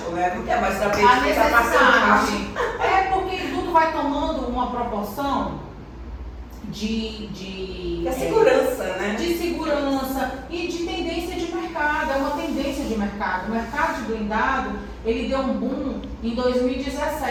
né? Não quer mais saber A de quem está passando. porque tudo vai tomando uma proporção de segurança, né? De segurança e de tendência de mercado. É uma tendência de mercado. O mercado de blindado, ele deu um boom em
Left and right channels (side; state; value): both; identical; correlation 1.00